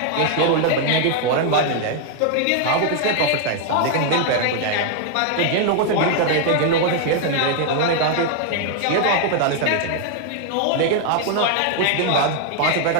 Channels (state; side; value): different; both; correlation 0.00